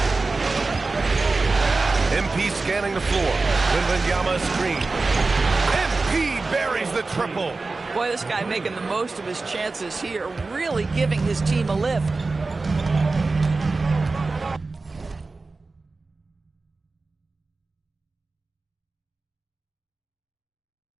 MP scanning the floor. Wembanyama screen. MP buries the triple. Boy, this guy making the most of his chances here, really giving his team a lift.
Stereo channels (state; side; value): quieter; left; 3.7 dB